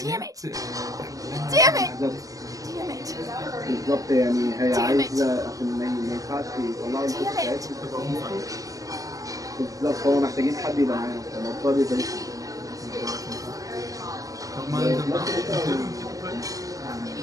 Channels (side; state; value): left; late; 0.17 ms